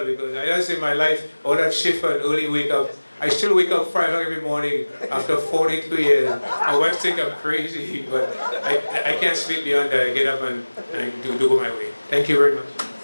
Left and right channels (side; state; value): both; inverted; correlation -1.00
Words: because I just in my life, all that shift and early wake up, I still wake up 5 o'clock every morning after 42 years. My wife thinks I'm crazy, but I can't sleep beyond that. I get up and I do go my way. Thank you very much.